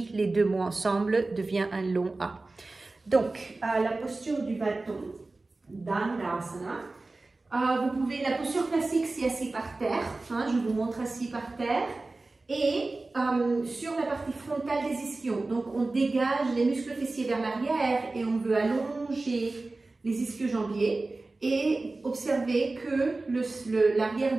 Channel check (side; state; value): left; quieter; 3.3 dB